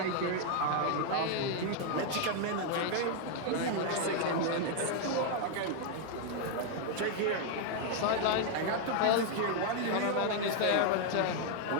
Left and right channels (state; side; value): different; both; correlation 0.00